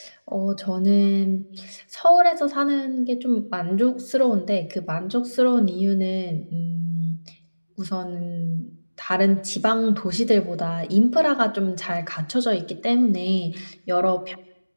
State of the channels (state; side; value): inverted; both; correlation -1.00